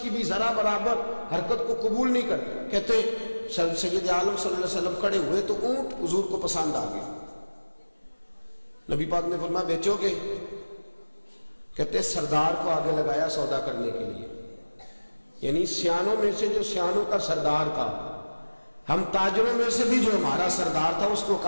کی بھی ذرا برابر حرکت کو قبول نہیں کرتے۔ کہتے سید عالم صلی اللہ علیہ وسلم کھڑے ہوئے تو اونٹ حضور کو پسند آ گیا، نبی پاک نے فرمایا بیچو گے؟ کہتے سردار کو آگے لگایا سودا کرنے کے لیے، یعنی سیانوں میں سے جو سیانوں کا سردار تھا، ہم تاجروں میں سے بھی جو ہمارا سردار تھا اس کو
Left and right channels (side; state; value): both; inverted; correlation -1.00